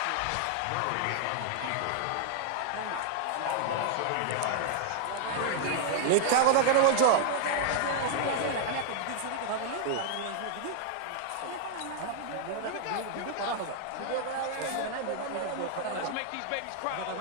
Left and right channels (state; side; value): different; both; correlation -0.01